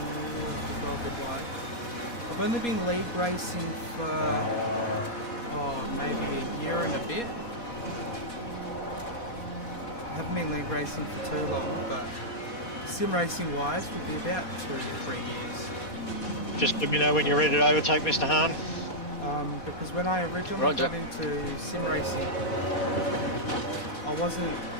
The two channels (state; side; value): late; right; 4.2 ms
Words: go a bit wide. I've only been league racing for maybe a year and a bit. I haven't been league racing for too long, but sim racing wise would be about 2 to 3 years. Just let me know when you're ready to overtake Mr. Hahn. Because when I originally got into sim racing, I wasn't